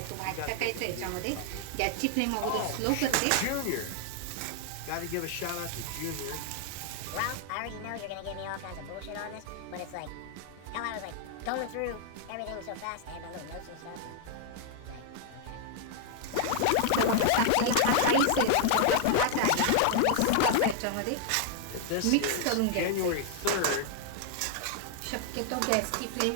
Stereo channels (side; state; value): both; different; correlation 0.00